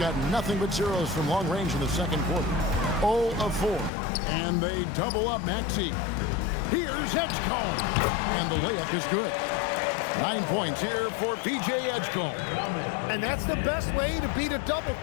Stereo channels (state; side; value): drops out; right; at 3.9 s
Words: nothing but zeros from long range in the second quarter. 0 of 4. And they double up Maxey. Here's Edgecombe. And the layup is good. 9 points here for P.J. Edgecombe. And that's the best way to beat a double